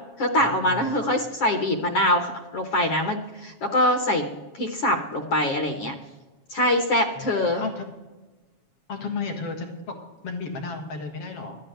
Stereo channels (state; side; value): late; right; 7.3 ms